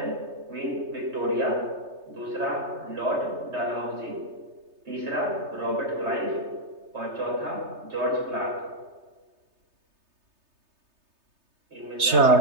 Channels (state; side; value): late; left; 3.3 ms